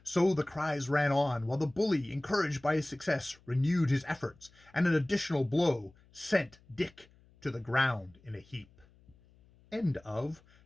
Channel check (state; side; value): noise; left; hum, 29 dB below the sound